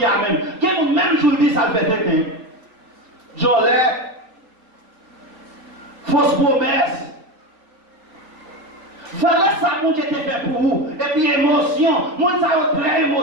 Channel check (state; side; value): late; left; 4.3 ms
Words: Amen. Quel monde même jour dit ça fait tête. Jolet. Fausse promesse. Voilà ça, mon Dieu, te fait pour vous. Et puis, émotion. Moi, ça a très